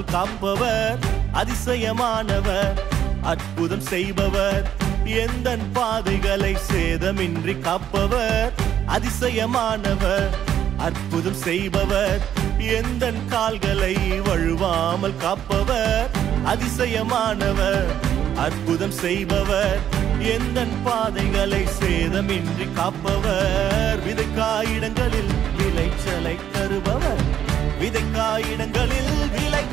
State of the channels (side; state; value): left; quieter; 10.2 dB